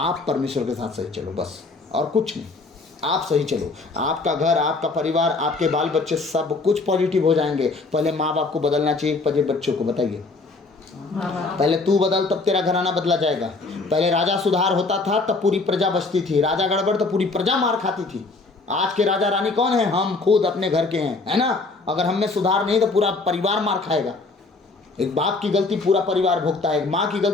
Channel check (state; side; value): quieter; right; 3.7 dB